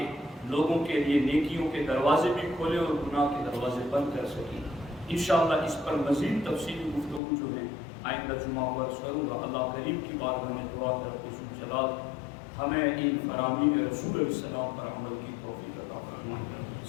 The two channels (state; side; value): drops out; right; at 7.2 s